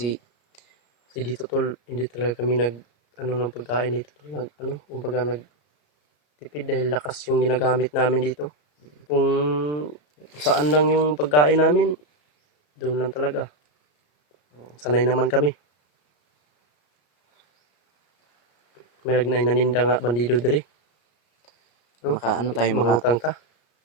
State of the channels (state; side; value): late; right; 34 ms